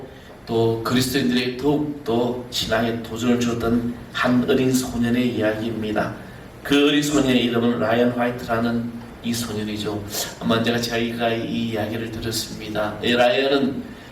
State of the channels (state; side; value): identical; both; correlation 1.00